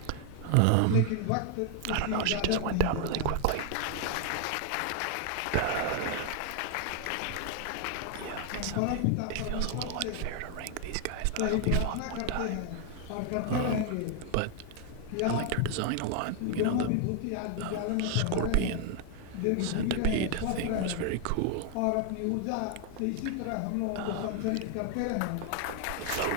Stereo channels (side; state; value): both; different; correlation 0.01